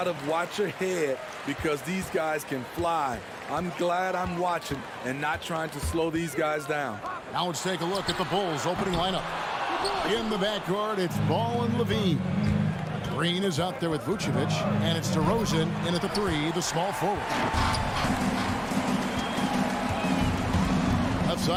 of watch ahead because these guys can fly. I'm glad I'm watching and not trying to slow these guys down. Now let's take a look at the Bulls opening lineup. In the backcourt, it's Ball and Levine. Green is out there with Vucevic, and it's DeRozan in at the 3, the small forward. Left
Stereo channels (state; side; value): identical; both; correlation 1.00